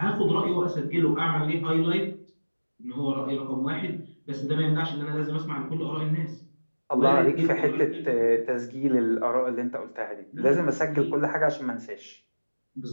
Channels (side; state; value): both; inverted; correlation -1.00